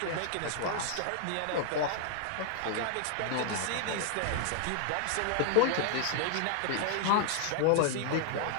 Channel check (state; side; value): different; both; correlation 0.00